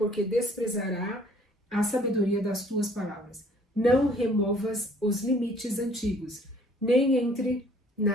desprezará a sabedoria das tuas palavras. Não removas os limites antigos, nem entre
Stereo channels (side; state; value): both; normal; correlation 0.57